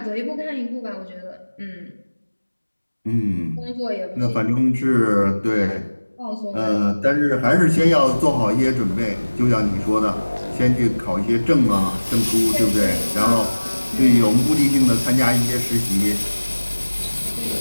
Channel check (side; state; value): both; inverted; correlation -1.00